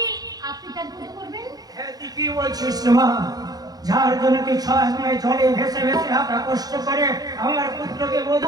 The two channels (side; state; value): left; late; 0.19 ms